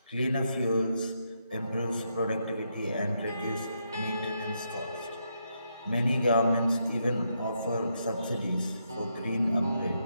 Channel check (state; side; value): inverted; both; correlation -0.80